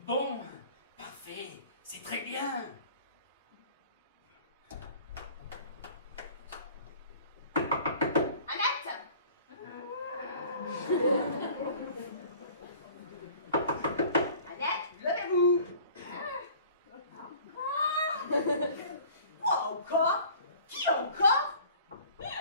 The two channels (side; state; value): both; inverted; correlation -0.48